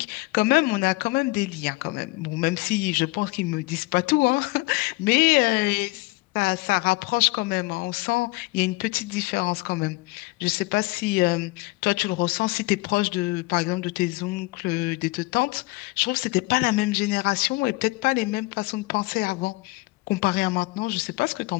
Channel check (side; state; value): right; quieter; 23.1 dB